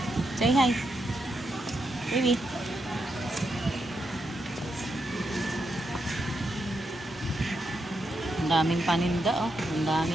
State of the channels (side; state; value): both; normal; correlation 0.83